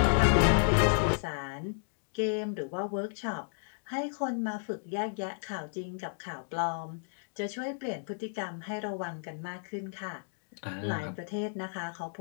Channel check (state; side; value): silent; right; digital silence